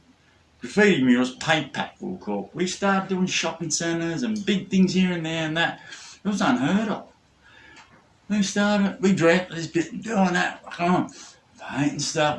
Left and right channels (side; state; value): both; identical; correlation 1.00